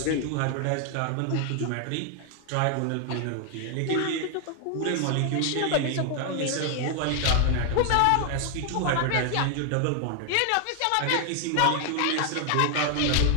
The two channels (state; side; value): different; both; correlation 0.00